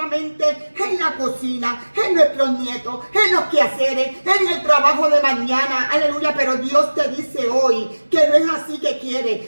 mente en la cocina, en nuestros nietos, en los quehaceres, en el trabajo de mañana, aleluya. Pero Dios te dice hoy que no es así que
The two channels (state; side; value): inverted; both; correlation -1.00